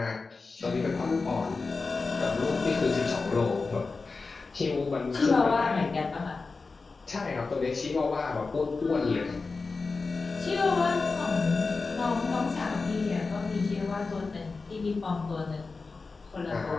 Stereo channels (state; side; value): quieter; right; 4.1 dB